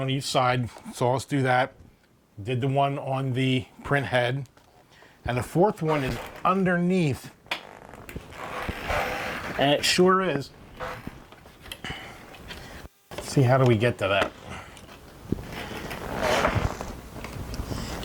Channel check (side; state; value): both; identical; correlation 1.00